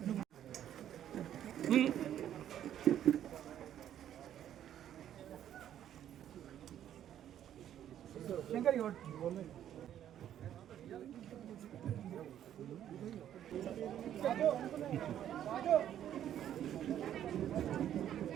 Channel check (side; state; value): left; quieter; 10.7 dB